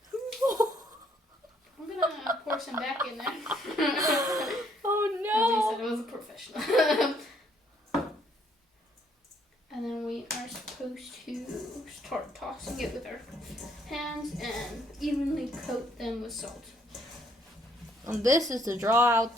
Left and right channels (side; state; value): both; normal; correlation 0.68